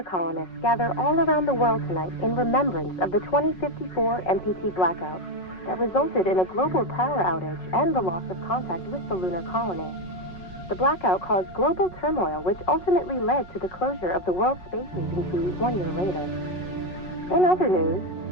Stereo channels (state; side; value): late; right; 5.4 ms